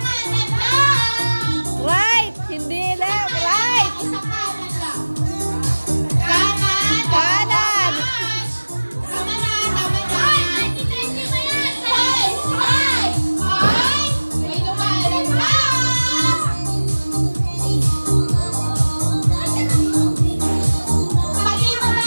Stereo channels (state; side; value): inverted; both; correlation -1.00